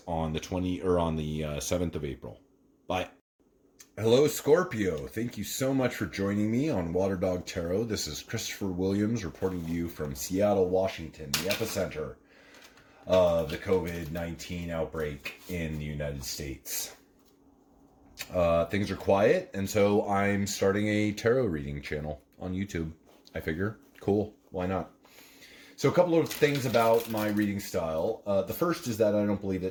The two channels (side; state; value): both; identical; correlation 1.00